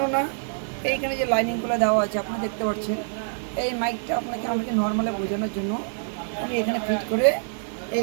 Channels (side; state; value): left; silent; digital silence